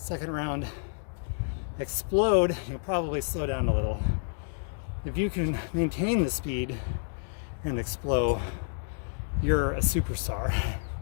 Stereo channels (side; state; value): right; silent; digital silence